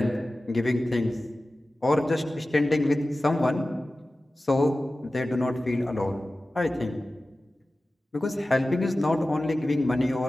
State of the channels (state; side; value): normal; both; correlation 0.96